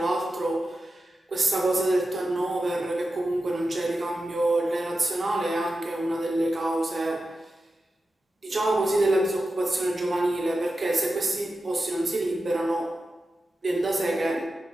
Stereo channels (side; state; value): both; normal; correlation 0.91